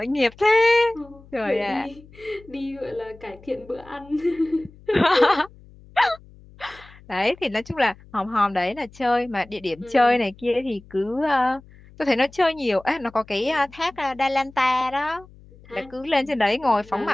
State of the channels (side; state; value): left; noise; hum, 23 dB below the sound